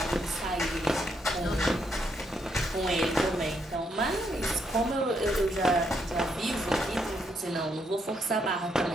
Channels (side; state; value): both; normal; correlation 0.76